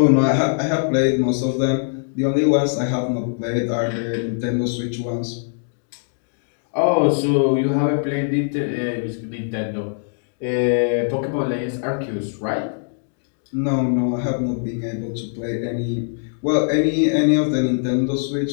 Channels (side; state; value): right; silent; digital silence